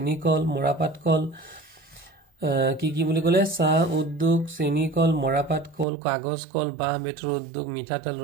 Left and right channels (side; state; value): left; drops out; at 5.9 s